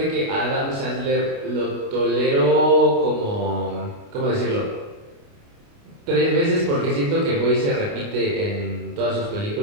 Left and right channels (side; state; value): left; late; 29 ms